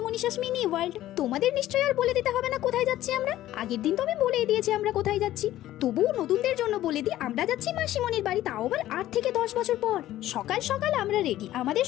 Manisha's mini world. তোমাদের নিশ্চয়ই আর বলে দিতে হবে না কোথায় যাচ্ছি আমরা। আগের দিন তো আমি বলেই দিয়েছি আমরা কোথায় যাচ্ছি, তবুও নতুনদের জন্য বলে দিই আমরা যাচ্ছি মাসিমণির বাড়ি, তাও আবার 8 থেকে 10 বছর পর। সকাল সকাল আমরা রেডি, আমাদের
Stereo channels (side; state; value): right; quieter; 14.1 dB